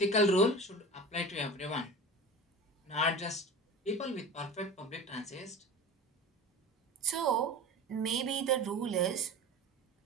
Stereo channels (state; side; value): normal; both; correlation 0.34